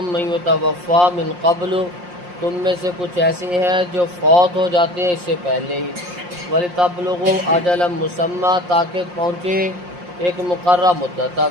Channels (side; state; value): left; late; 5.7 ms